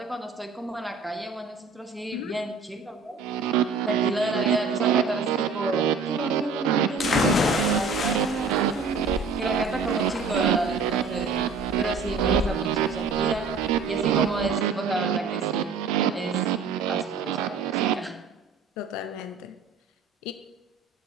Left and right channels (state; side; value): quieter; left; 4.6 dB